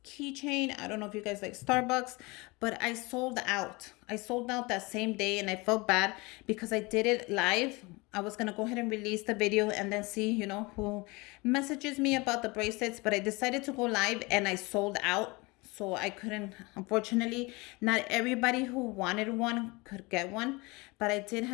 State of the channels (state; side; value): quieter; right; 25.2 dB